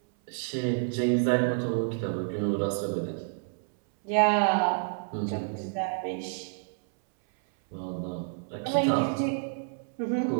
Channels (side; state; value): left; silent; 58 dB below the other